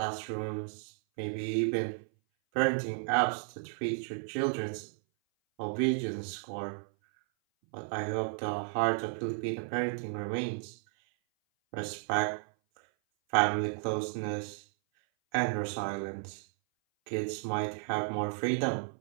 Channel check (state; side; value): silent; left; 56 dB below the other